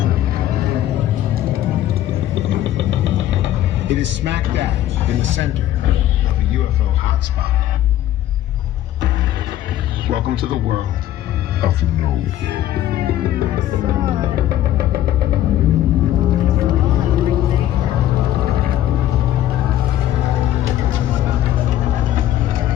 It is smack dab in the center of a UFO hotspot. Welcome to the world of No.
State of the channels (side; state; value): right; quieter; 12.7 dB